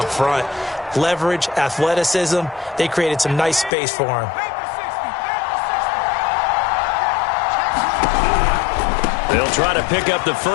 front? Leverage, athleticism, they created some nice space for him. They'll try to pick up the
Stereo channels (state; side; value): drops out; right; at 3.7 s